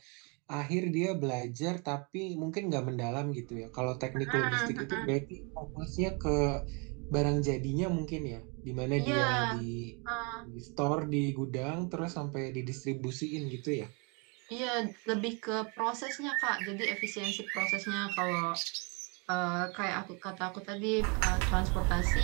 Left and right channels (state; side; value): quieter; left; 33.1 dB